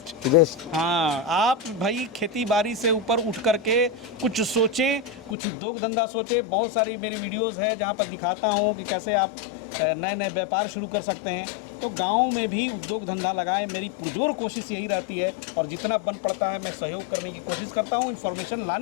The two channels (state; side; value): drops out; right; at 5.4 s